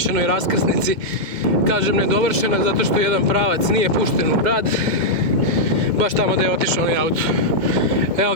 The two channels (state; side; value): late; left; 2.2 ms